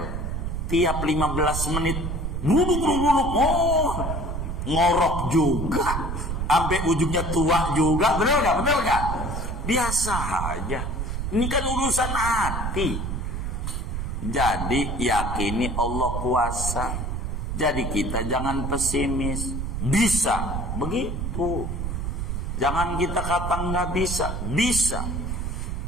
Tiap 15 menit buluk. Oh, ngorok juga. Sampai ujungnya tua juga. Bener gak? Biasa aja. Ini kan urusan hati. Jadi yakini Allah kuasa. Jadi kita jangan pesimis. Bisa. Begitu. Jangan kita kata nggak bisa. Bisa.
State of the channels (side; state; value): right; noise; rumble, 3 dB below the sound